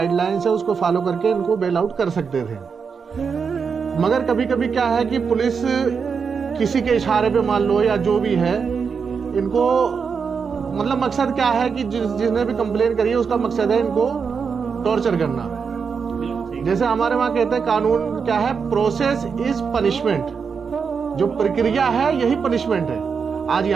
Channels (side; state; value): left; quieter; 5.9 dB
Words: है, उसको फॉलो करके इनको बेल आउट कर सकते थे। मगर कभी कभी क्या है कि पुलिस किसी के इशारे पे मान लो या जो भी है, इनको मतलब मकसद क्या है कि जिसने भी कंप्लेन करी है उसका मकसद है इनको टॉर्चर करना। जैसे हमारे वहाँ कहते हैं कानून क्या है, प्रोसेस इज पनिशमेंट, जो प्रक्रिया है यही पनिशमेंट है। आज